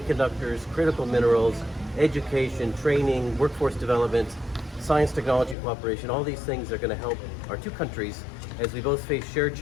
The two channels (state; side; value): drops out; right; at 5.6 s